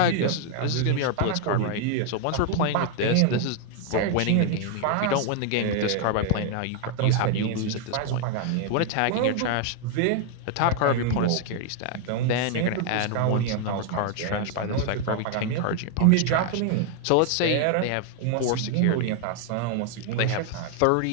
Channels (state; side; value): different; both; correlation 0.00